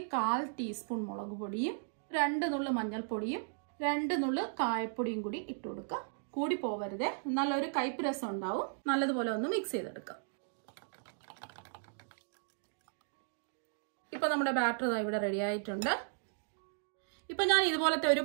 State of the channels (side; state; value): left; silent; digital silence